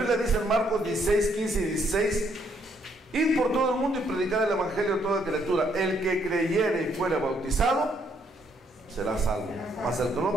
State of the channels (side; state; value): both; normal; correlation 0.70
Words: dice en Marcos 16, 15 y 16: id por todo el mundo y predicad el evangelio a toda criatura. El que creyere y fuere bautizado será salvo, mas el que no